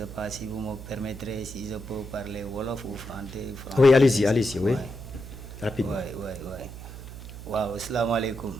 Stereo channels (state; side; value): noise; right; hum, 12 dB below the sound